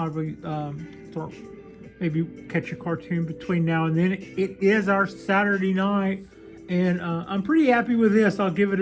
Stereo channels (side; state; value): both; identical; correlation 1.00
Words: maybe catch a cartoon between now and then. It is our Saturday night, and I'm pretty happy with this. I'll give it